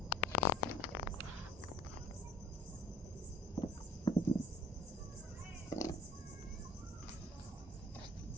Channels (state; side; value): normal; both; correlation 0.52